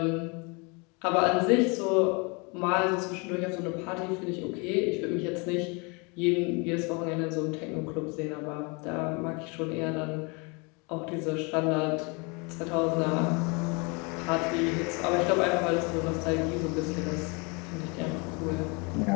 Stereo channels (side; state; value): right; quieter; 30.6 dB